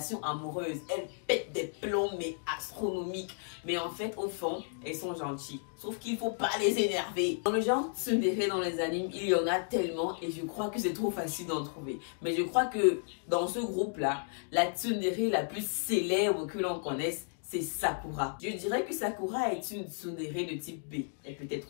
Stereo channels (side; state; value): right; silent; 56 dB below the other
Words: amoureuse, elles pètent des plombs mais astronomiques. Mais en fait, au fond, elles sont gentilles. Sauf qu'il ne faut pas les énerver. Dans le genre tsundere dans les animes, il y en a tellement et je crois que c'est trop facile d'en trouver. Mais je crois que dans ce groupe-là, la tsundere la plus célèbre que l'on connaisse, c'est Sakura. Je dirais que Sakura est une tsundere de type B. Elle peut